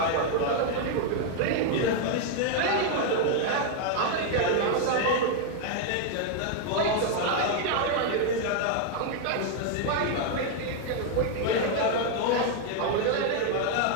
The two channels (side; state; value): both; different; correlation 0.00